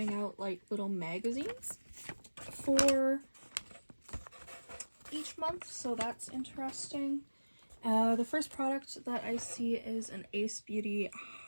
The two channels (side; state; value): both; inverted; correlation -1.00